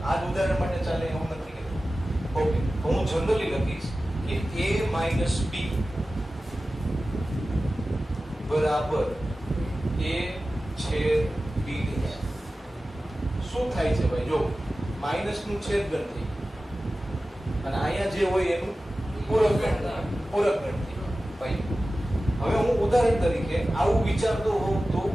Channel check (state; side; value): normal; both; correlation 0.95